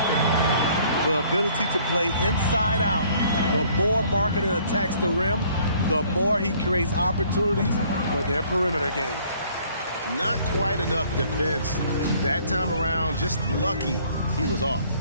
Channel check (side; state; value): both; inverted; correlation -0.59